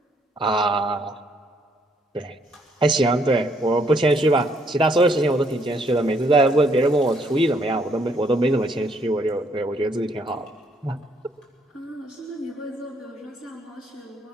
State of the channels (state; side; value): normal; both; correlation 0.69